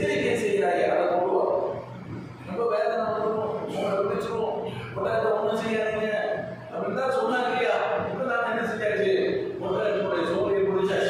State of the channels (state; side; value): identical; both; correlation 1.00